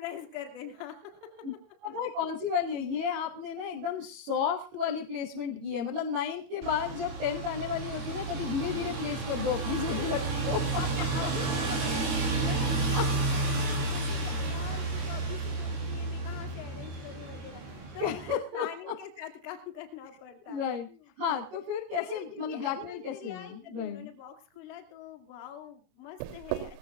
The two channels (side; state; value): left; late; 22 ms